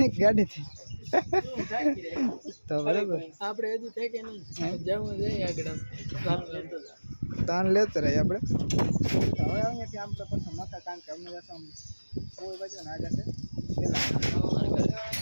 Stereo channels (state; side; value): inverted; both; correlation -1.00